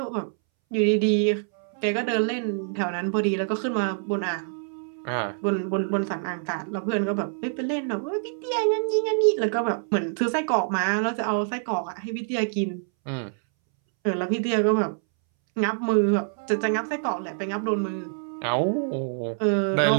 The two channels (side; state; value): left; silent; 61 dB below the other